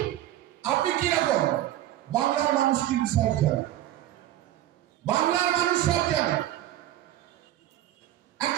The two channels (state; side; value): quieter; left; 13.6 dB